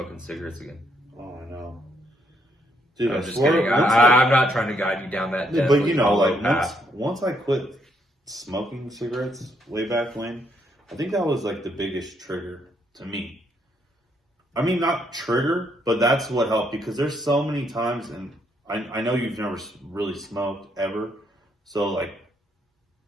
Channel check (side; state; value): both; normal; correlation 0.73